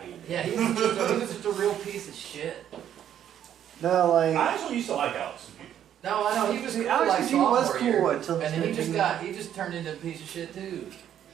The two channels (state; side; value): quieter; left; 10.2 dB